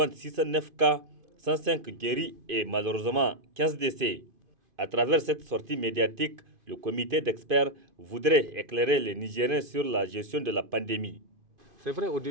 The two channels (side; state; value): left; late; 2.5 ms